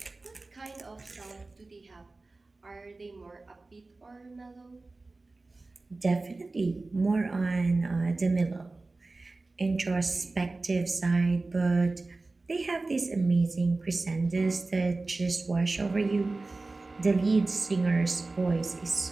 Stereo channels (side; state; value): left; quieter; 3.4 dB